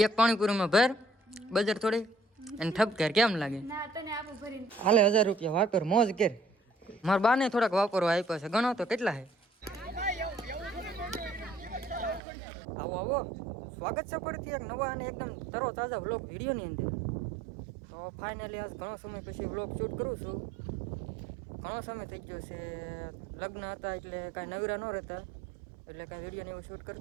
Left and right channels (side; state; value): left; drops out; at 12.2 s